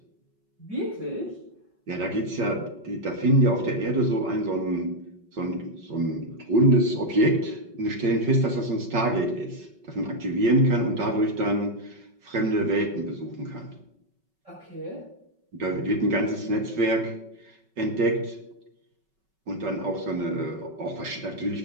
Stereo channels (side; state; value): left; late; 5.3 ms